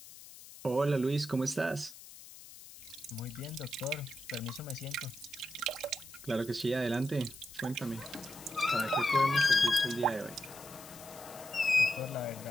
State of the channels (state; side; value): noise; left; hiss, 17 dB below the sound